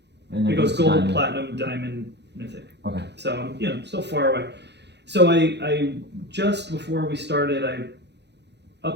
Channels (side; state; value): left; late; 0.50 ms